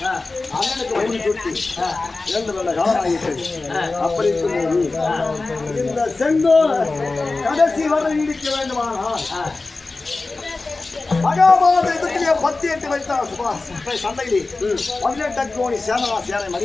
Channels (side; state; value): right; quieter; 3.6 dB